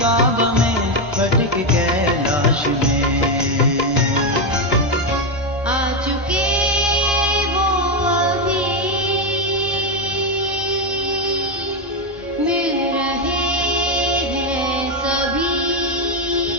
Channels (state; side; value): normal; both; correlation 0.06